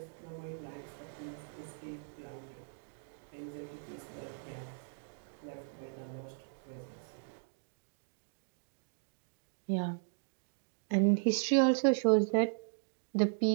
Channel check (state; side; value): silent; left; digital silence